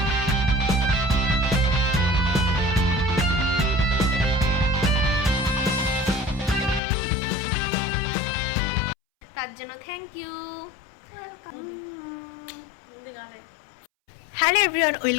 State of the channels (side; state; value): right; drops out; at 6.8 s